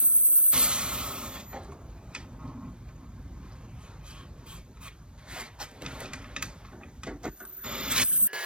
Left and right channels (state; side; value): late; left; 0.053 ms